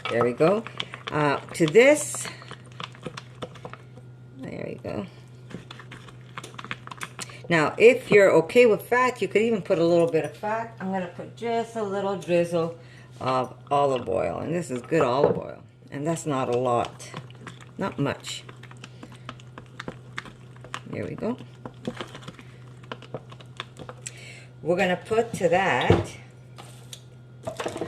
There we go. To this, there we go. Now, if you're okay with fat, you could even put a little bit of fat. I'm going to put just a little drizzle of olive oil. And this is good olive oil. And that's not a lot. Not much. There we go. We're going to put to that...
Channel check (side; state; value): both; identical; correlation 1.00